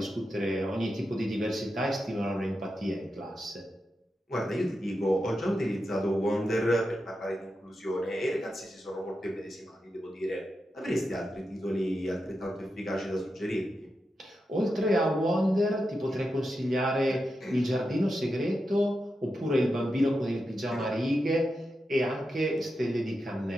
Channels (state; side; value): normal; both; correlation 0.88